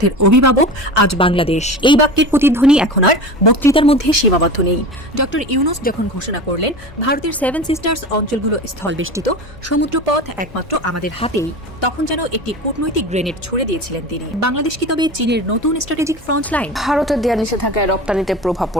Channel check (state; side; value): normal; both; correlation 0.31